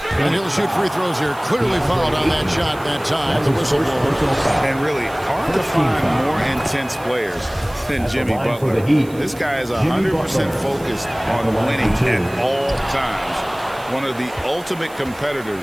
And he'll shoot free throws here. Clearly fouled on that shot that time. The whistle blows. And really hard to find more intense players than Jimmy Butler. This guy is 100% focused on winning at all times. One of the ultimate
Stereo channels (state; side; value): noise; right; hiss, 22 dB below the sound